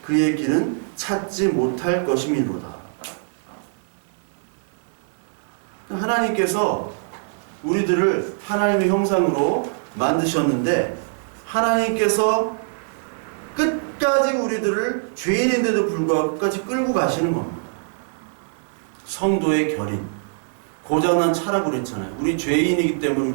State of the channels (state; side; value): silent; left; digital silence